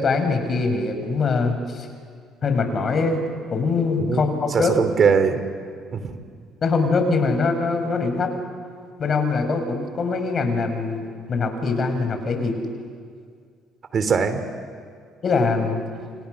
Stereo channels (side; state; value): both; normal; correlation 0.72